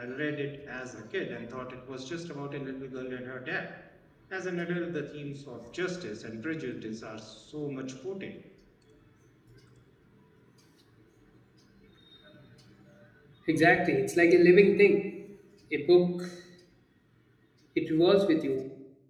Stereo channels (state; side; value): identical; both; correlation 1.00